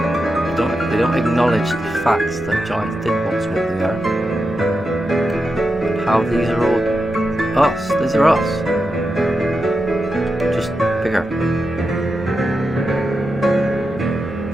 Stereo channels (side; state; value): right; noise; rumble, 24 dB below the sound